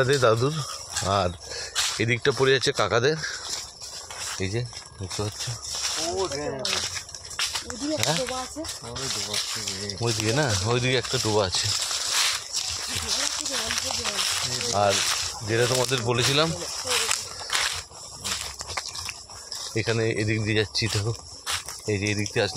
দাদুর, আর এদিকটা পড়ে যাচ্ছে কাকাদের। এই যে দেখতে পাচ্ছ, ওইদিকে না, ওইদিকে একটা ডোবা আছে। আর যেটা তোমাদের বলেছিলাম, এখানে এদিক দিয়ে যাচ্ছি, দেখো এই যে এদিক দিয়ে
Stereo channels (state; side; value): identical; both; correlation 1.00